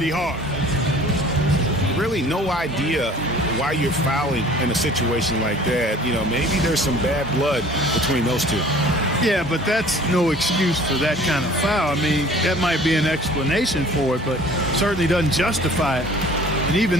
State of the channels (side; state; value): both; normal; correlation 0.49